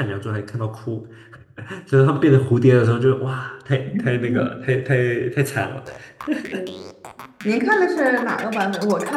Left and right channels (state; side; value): identical; both; correlation 1.00